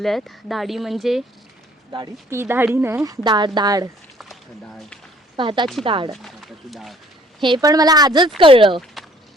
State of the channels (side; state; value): both; normal; correlation 0.59